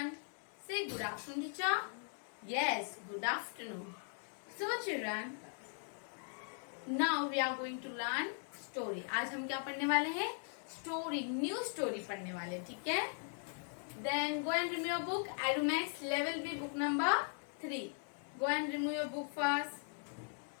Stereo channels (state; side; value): silent; right; 51 dB below the other